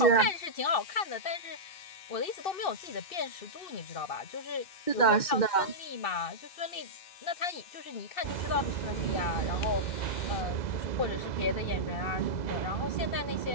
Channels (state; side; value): late; right; 2.6 ms